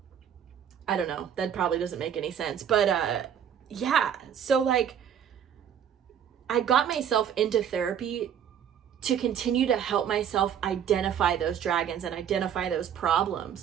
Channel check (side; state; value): left; quieter; 8.8 dB